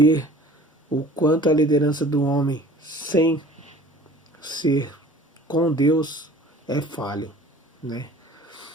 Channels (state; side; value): normal; both; correlation 0.47